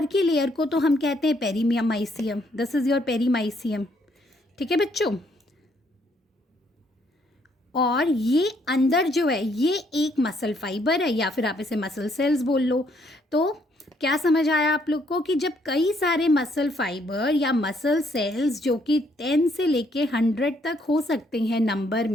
की लेयर को तो हम कहते हैं perimysium. This is your perimysium. ठीक है बच्चों, और ये अंदर जो है ये एक मसल फाइबर है, या फिर आप इसे मसल सेल्स बोल लो। तो क्या समझ आया आप लोग को कि जब कई सारे मसल फाइबर या मसल सेल्स जो कि 10 से लेके 100 तक हो सकते हैं नंबर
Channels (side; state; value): both; normal; correlation 0.70